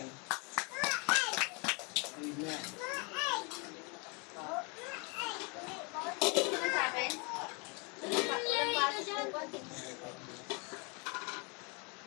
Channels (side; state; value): right; quieter; 32.2 dB